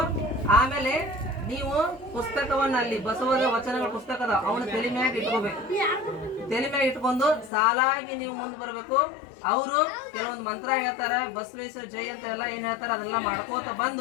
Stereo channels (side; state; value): right; drops out; at 7.5 s